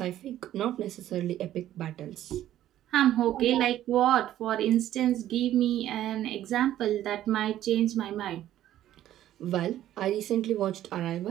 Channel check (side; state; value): left; quieter; 12.7 dB